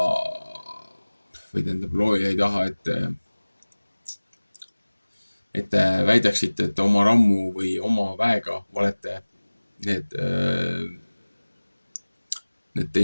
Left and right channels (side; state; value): both; inverted; correlation -1.00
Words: või tähendab, looja ei taha, et te väidaksite, et oma rammu või oma väega olete need